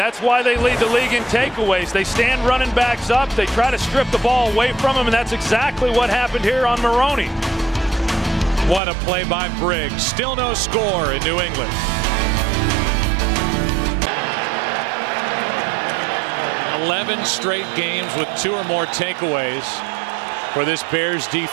why they lead the league in takeaways. They stand running backs up. They try to strip the ball away from them, and that's exactly what happened here on Maroney. What a play by Briggs. Still no score in New England. 11 straight games with 2 or more takeaways for this Bears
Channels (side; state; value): left; drops out; at 8.8 s